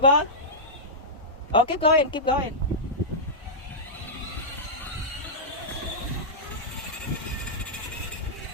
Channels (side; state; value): both; normal; correlation -0.12